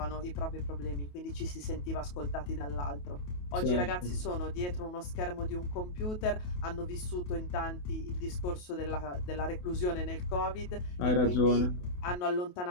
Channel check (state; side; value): late; right; 28 ms